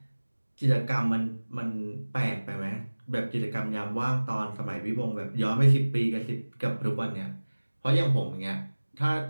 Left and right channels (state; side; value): inverted; both; correlation -1.00